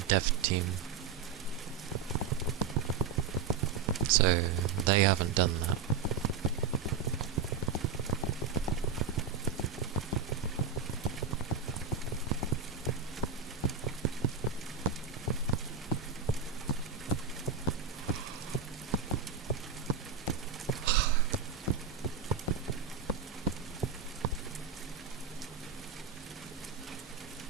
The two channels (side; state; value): left; quieter; 6.2 dB